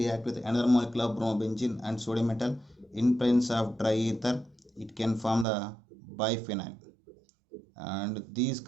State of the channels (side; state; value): left; drops out; at 5.5 s